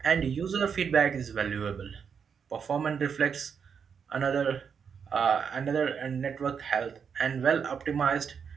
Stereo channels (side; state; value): left; quieter; 6.7 dB